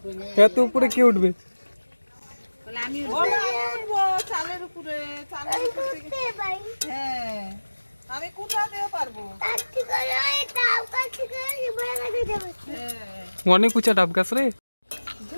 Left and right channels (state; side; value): inverted; both; correlation -1.00